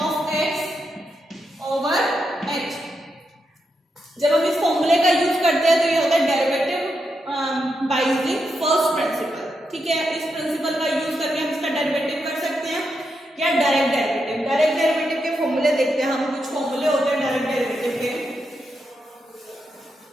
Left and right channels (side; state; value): both; normal; correlation 0.84